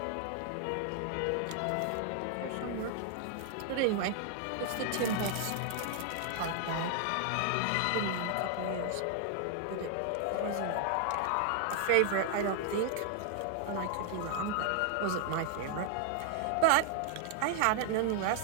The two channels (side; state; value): both; different; correlation 0.00